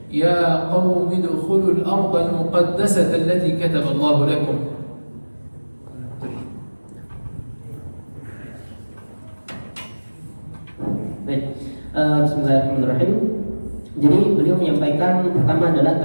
يا قوم ادخلوا الأرض المقدسة التي كتب الله لكم. Baik, bismillahirrahmanirrahim. Jadi beliau menyampaikan pertama adalah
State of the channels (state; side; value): inverted; both; correlation -1.00